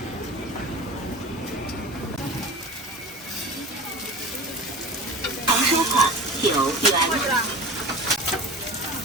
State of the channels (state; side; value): normal; both; correlation 0.34